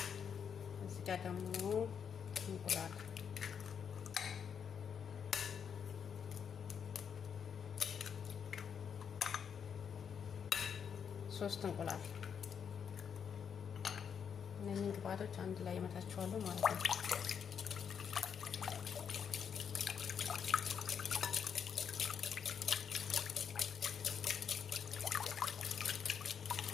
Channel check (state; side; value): quieter; right; 7.3 dB